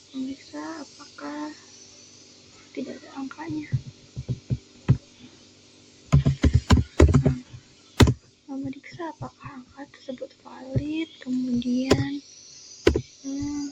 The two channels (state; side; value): identical; both; correlation 1.00